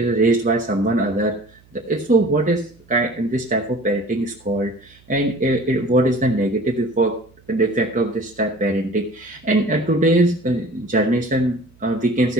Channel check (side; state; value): right; noise; hum, 29 dB below the sound